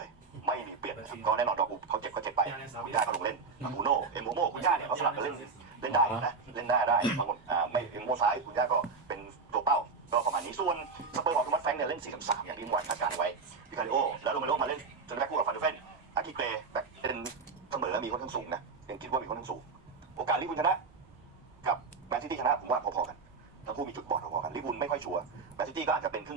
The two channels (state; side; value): quieter; left; 4.7 dB